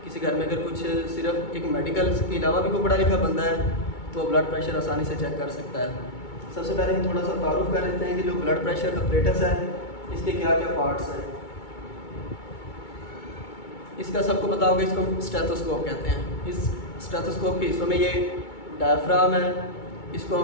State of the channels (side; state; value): right; late; 2.2 ms